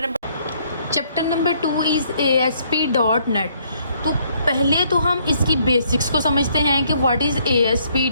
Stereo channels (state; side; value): inverted; both; correlation -0.68